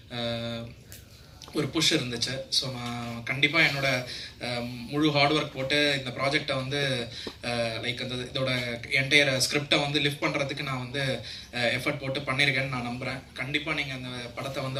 ஒரு புஷ் இருந்துச்சு. ஸோ நான் கண்டிப்பாக என்னோட முழு ஹார்ட் ஒர்க் போட்டு இந்த ப்ராஜெக்டை வந்து லைக் அந்த இதோட என்டையர் ஸ்கிரிப்டை வந்து லிஃப்ட் பண்ணுறதுக்கு நான் வந்து எஃபர்ட் போட்டு பண்ணியிருக்கேன்னு நான் நம்புகிறேன். கண்டிப்பாக நீங்கள் அந்த படத்தை வந்து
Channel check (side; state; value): both; identical; correlation 1.00